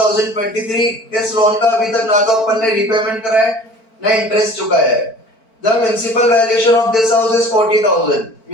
इस loan का अभी तक ना तो अपन ने रीपेमेंट करा है ना इंटरेस्ट चुकाया है. The municipal valuation of this house is 40,000.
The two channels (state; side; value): late; right; 4.5 ms